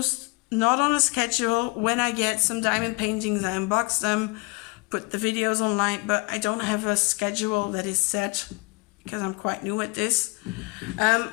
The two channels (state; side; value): quieter; right; 27.4 dB